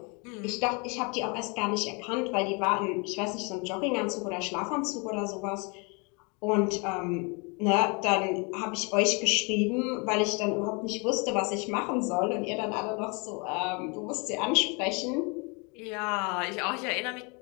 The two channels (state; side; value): quieter; right; 31.6 dB